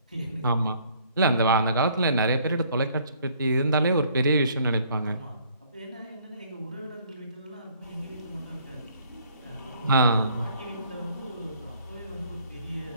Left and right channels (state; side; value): inverted; both; correlation -0.61